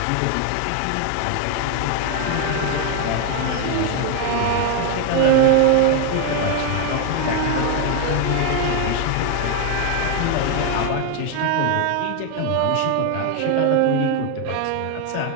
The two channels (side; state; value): both; different; correlation 0.01